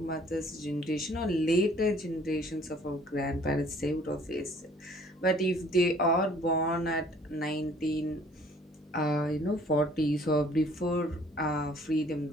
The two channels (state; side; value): normal; both; correlation 0.57